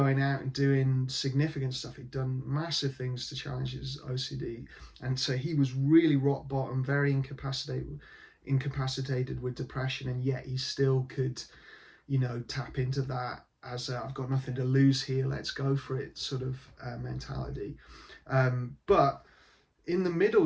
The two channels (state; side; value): identical; both; correlation 1.00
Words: out and doing significant stuff. He'd done massive things to challenge his OCD, and so he was really rock bottom, very incapacitated with depression, and yet he still could, tap into that as I've got nothing to lose here, let's go for it sort of mentality. But in the middle